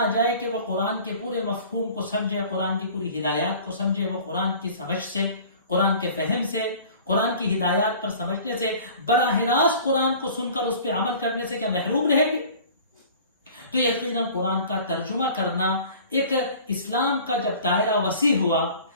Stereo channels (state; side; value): inverted; both; correlation -0.46